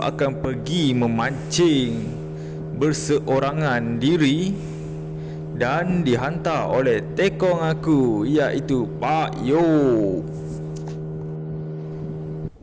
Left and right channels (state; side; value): identical; both; correlation 1.00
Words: pergi memancing berseorangan diri dan dihantar oleh tekong aku, iaitu Pak Yop.